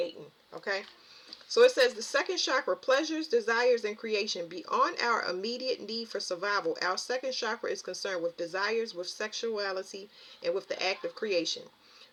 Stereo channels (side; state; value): both; identical; correlation 1.00